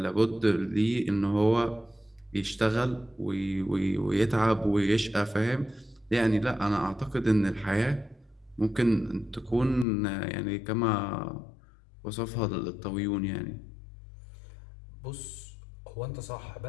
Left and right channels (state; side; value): drops out; right; at 9.9 s